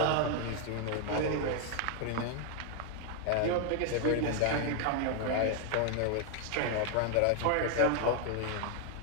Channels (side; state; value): both; different; correlation 0.00